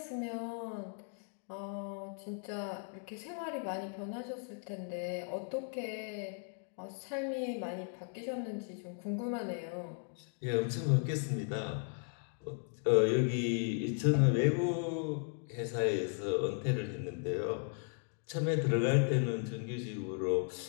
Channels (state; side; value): silent; right; 54 dB below the other